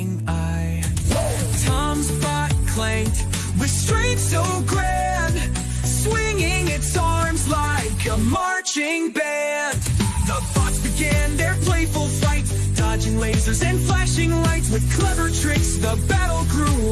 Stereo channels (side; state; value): both; identical; correlation 1.00